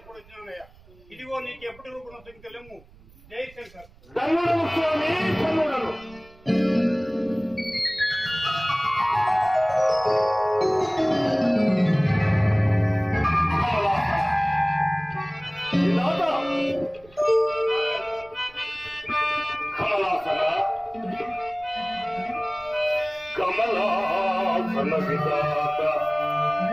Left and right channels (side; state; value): right; noise; rumble, 25 dB below the sound